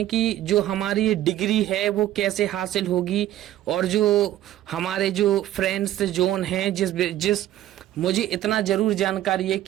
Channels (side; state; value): left; quieter; 13.3 dB